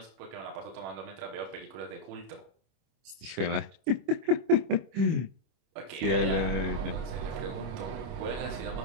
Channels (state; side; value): late; left; 25 ms